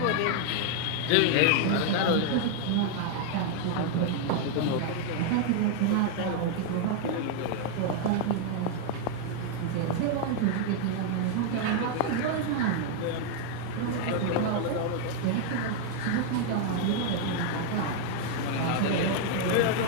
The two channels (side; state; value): both; different; correlation 0.00